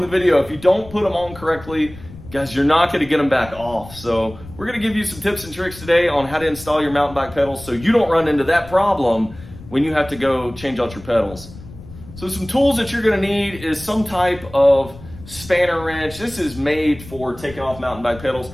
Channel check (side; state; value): left; noise; rumble, 17 dB below the sound